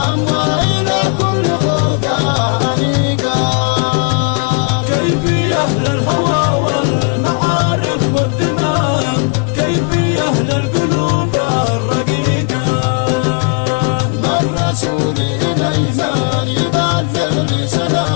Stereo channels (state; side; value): quieter; right; 37.3 dB